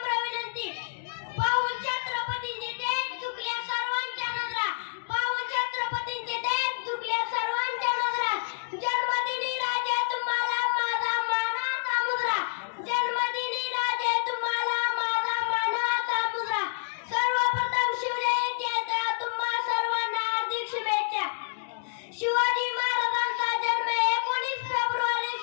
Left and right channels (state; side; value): silent; right; digital silence